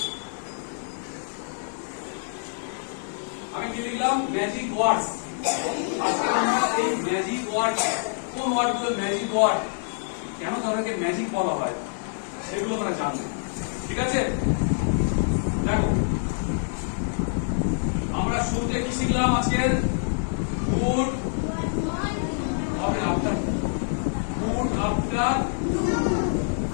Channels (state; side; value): silent; right; digital silence